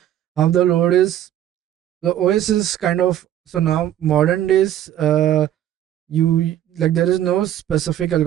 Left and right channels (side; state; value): left; quieter; 11.6 dB